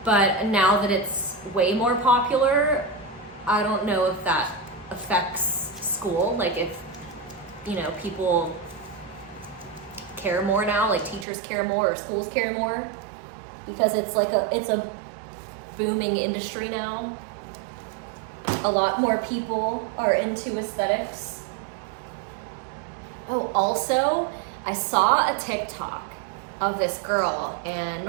But now that it's way more popular, I don't know if that affects school. Like, if, you know, people care more now, like teachers care more or schools care more, because it's like it's a booming industry now. A lot more people are into aesthetics. Oh, also, I saw a TikTok of this girl, and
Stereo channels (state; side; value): drops out; left; at 11.2 s